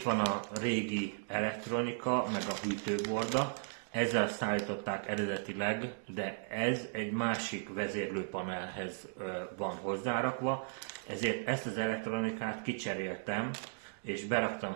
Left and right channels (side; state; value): left; silent; digital silence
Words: van a régi elektronika, meg a hűtőborda. Ezzel szállították eredetileg, de ez egy másik vezérlőpanelhez van hozzárakva, ezért ezt az elektronikát kicseréltem, és beraktam